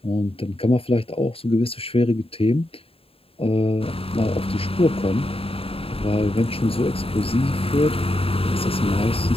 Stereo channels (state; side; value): late; right; 0.27 ms